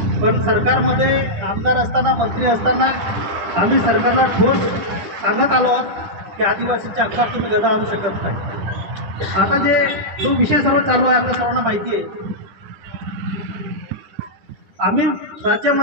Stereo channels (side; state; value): left; late; 9.9 ms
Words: पण सरकारमध्ये आमदार असताना, मंत्री असताना आम्ही सरकारला ठोस सांगत आलो आहोत की आदिवासींच्या हक्कात तुम्ही गदा आणू शकत नाही. आता जो विषय सर्व चालू आहे आपल्या सर्वांना माहिती आहे. आम्ही